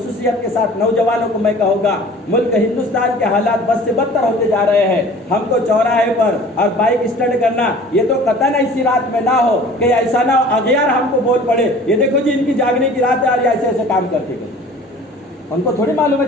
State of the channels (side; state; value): both; normal; correlation 0.46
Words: کے ساتھ نوجوانوں کو میں کہوں گا، ملک ہندوستان کے حالات بد سے بدتر ہوتے جا رہے ہیں۔ ہم کو چوراہے پر اور بائک اسٹنٹ کرنا، یہ تو قطعاً ایسی رات میں نہ ہو کہ ایسا نہ ہو اغیار ہم کو بول پڑے، یہ دیکھو جی ان کی جاگنے کی رات ہے اور یہ ایسے ایسے کام کرتے گئے۔ ان کو تھوڑی معلوم ہے